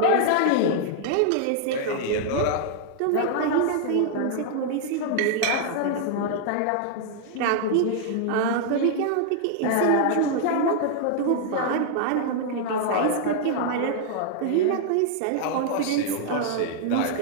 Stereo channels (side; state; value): both; different; correlation -0.01